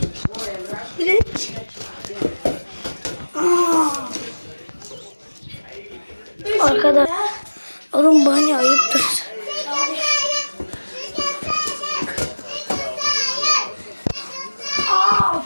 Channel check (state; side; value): inverted; both; correlation -1.00